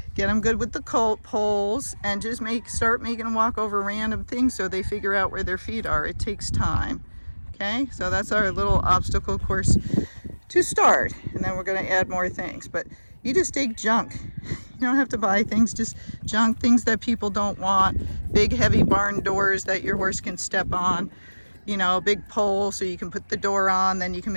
get them good with the poles, and just start making them walk over random things so they figure out where their feet are. It takes time. Okay, so that's our little obstacle course to start, and then we're going to add more things. But you just take junk. You don't have to buy things, just junk, things that people don't want. Big heavy barn doors that your horse can step on, you know, a big pole so you can put the door on, then you can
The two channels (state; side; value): inverted; both; correlation -1.00